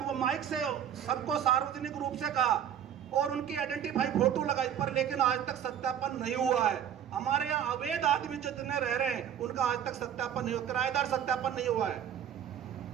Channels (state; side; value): quieter; left; 9.4 dB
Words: माइक से सबको सार्वजनिक रूप से कहा और उनकी आइडेंटिफाई फोटो लगाई, पर लेकिन आज तक सत्यापन नहीं हुआ है। हमारे यहाँ अवैध आदमी जितने रह रहे हैं उनका आज तक सत्यापन नहीं हुआ, किराएदार सत्यापन नहीं हुआ है,